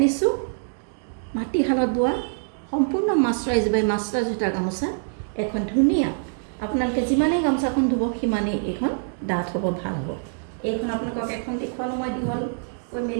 মাটিশালত বোৱা সম্পূৰ্ণ মাস্টাৰাইজ বাই মাস্টাৰাইজ সূতাৰ গামোচা। এখন ধুনীয়া, আপোনালোকে যিমানেই গামোচাখন ধুব সিমানেই এইখন ডাঠ হ'ব, ভাল হ'ব। এইখন আপোনালোকক এখন দেখুৱালো মই দীঘল কৈ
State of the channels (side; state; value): left; silent; digital silence